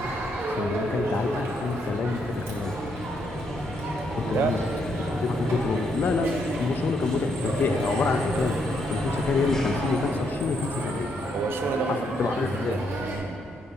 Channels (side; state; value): both; normal; correlation 0.76